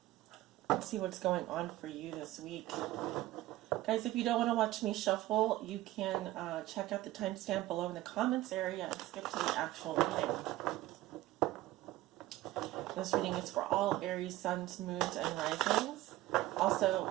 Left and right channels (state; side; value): quieter; left; 16.4 dB